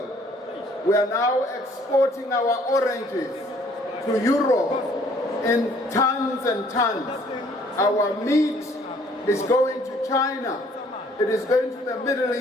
We are now exporting our oranges to Europe in tons and tons. Our meat is going to China. It is going to the Middle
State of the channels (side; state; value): both; normal; correlation 0.60